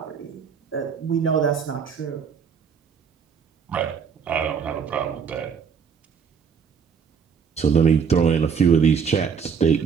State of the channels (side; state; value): left; quieter; 6.5 dB